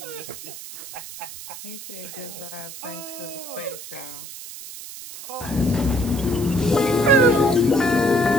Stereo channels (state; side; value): noise; right; hiss, 12 dB below the sound